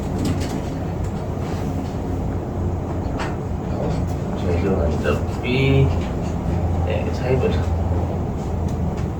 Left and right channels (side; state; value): both; identical; correlation 1.00